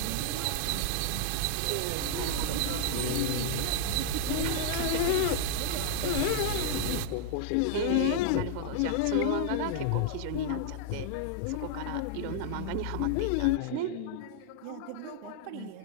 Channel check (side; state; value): both; different; correlation 0.00